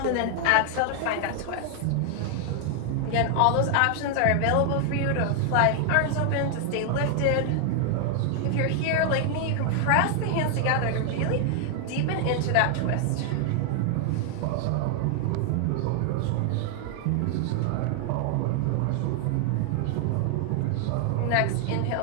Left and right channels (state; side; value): different; both; correlation 0.00